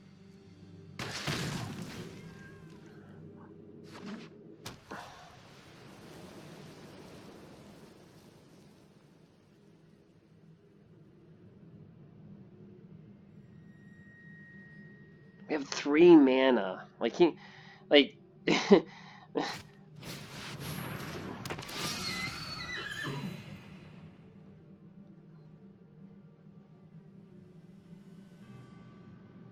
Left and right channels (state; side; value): identical; both; correlation 1.00